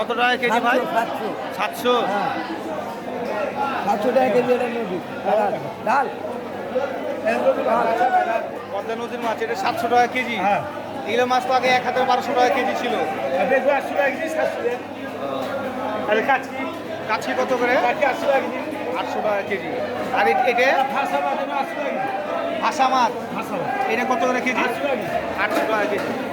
টাকা কেজি ভাই? 700 700। 700 টাকা কেজি এটা নদী ডাল। পদ্মা নদীর মাছ এটা 700 টাকা কেজি। হ্যাঁ। এগুলো মাছ তো আগে 1000-1200 টাকা কেজি ছিল। দেখবো 80 টাকা কেজি, 700 টাকা। আর কাচকি কাছি কত করে? 800 টাকা কেজি। 800 টাকা কেজি। আর এটা ফাঁসা মাছ 800 টাকা কেজি। ভাষা মাছ ফাঁসা মাছ এটা কত করে কেজি? 800 টাকা কেজি। 800 টাকা কেজি।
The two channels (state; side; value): identical; both; correlation 1.00